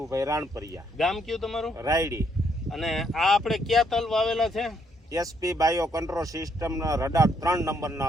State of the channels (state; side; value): normal; both; correlation 0.72